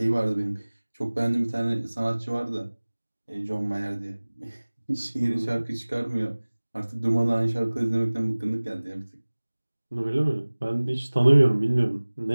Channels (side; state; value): both; inverted; correlation -1.00